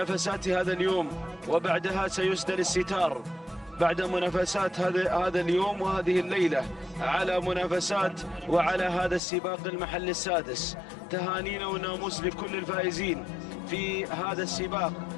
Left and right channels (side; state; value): right; drops out; at 9.2 s